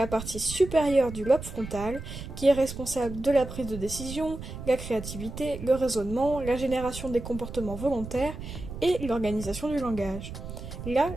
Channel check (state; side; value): noise; right; rumble, 10 dB below the sound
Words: partie supérieure du lobe frontal, qui est responsable de la prise de décision, la créativité, le raisonnement, la génération des comportements volontaires et l'organisation du langage. Là,